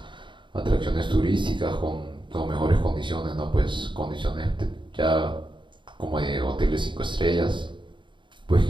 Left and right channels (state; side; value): late; left; 0.23 ms